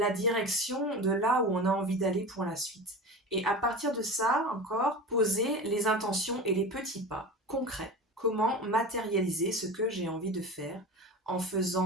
direction de là où on a envie d'aller pour la suite. Et à partir de ça, encore, poser les intentions et les petits pas concrets. Comment matérialiser ce que j'ai envie de faire en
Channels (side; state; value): both; normal; correlation 0.31